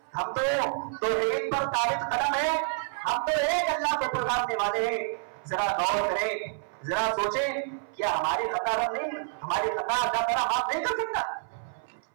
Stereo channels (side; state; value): left; silent; 59 dB below the other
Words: ہم تو توحید پر ثابت قدم ہیں، ہم تو ایک اللہ کو پکارنے والے ہیں۔ ذرا غور کریں، ذرا سوچیں، کیا ہماری خطا رب نہیں، ہماری خطا اللہ تعالیٰ معاف نہیں کر سکتا؟